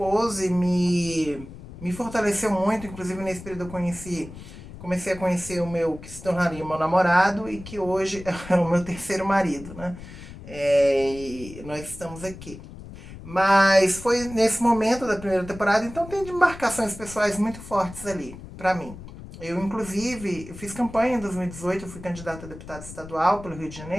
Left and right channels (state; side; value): noise; left; rumble, 14 dB below the sound